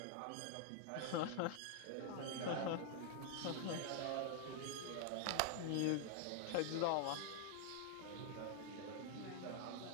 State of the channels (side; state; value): both; different; correlation 0.00